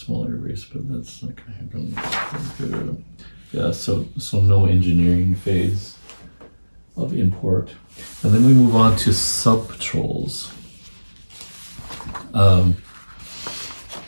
small air base, but that's not going to happen. Yeah, so no engineering phase of import. And then we move on to sub-patrols. And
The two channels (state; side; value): inverted; both; correlation -1.00